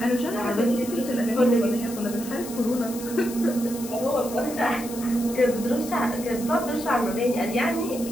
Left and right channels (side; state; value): left; noise; hiss, 12 dB below the sound